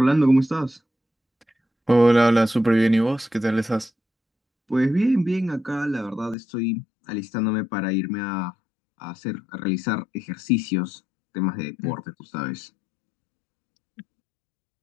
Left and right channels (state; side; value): drops out; right; at 6.4 s